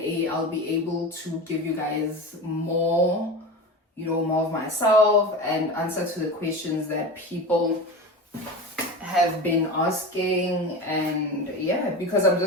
I'll be able to give you guys more, more of myself and answer to the questions that people have been asking. And yeah, because I'm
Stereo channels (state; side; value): normal; both; correlation 0.28